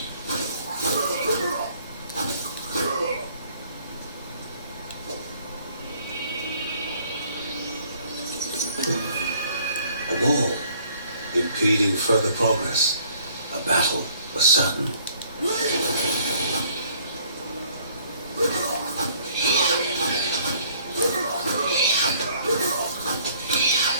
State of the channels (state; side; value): inverted; both; correlation -0.59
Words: A wall, impeding further progress. A battle was sudden.